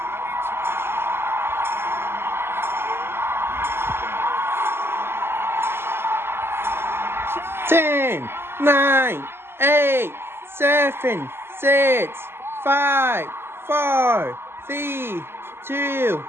Ten, 9, 8, 7, 6, 5, 4, 3, 2,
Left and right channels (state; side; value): late; left; 0.12 ms